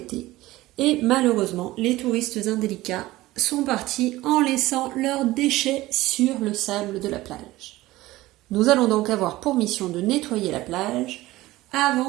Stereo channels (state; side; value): quieter; left; 17.7 dB